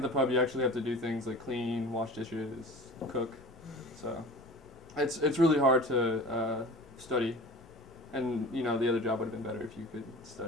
the pub, you actually have to do things like clean, wash dishes, cook. So it's really hard to study, and the other job would have been better if you could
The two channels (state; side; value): normal; both; correlation 0.39